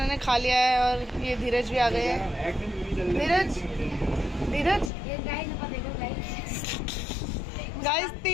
खा लिया है और ये धीरज भी आ गए हैं। धीरज गाइस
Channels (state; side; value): drops out; right; at 4.9 s